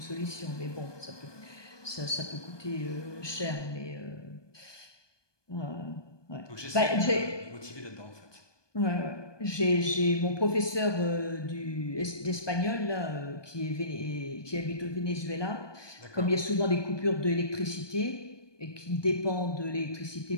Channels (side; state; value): right; late; 1.2 ms